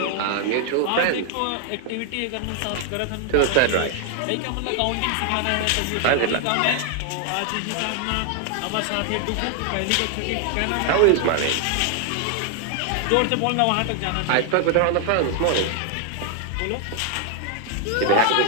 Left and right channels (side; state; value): both; different; correlation 0.00